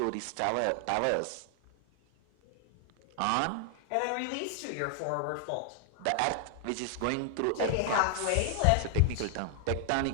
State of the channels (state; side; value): different; both; correlation 0.00